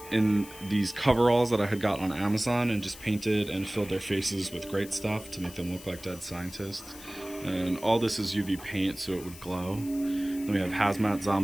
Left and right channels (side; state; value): left; noise; hiss, 17 dB below the sound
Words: in these coveralls that I had got on Amazon and just painted and filled their faces with great stuff to make them look like dead scientists. And all this is UV paint so it would glow. Then we have Hazmat